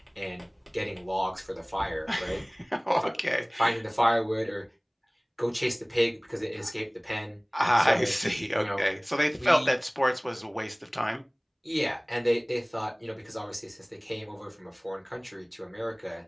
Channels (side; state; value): both; identical; correlation 1.00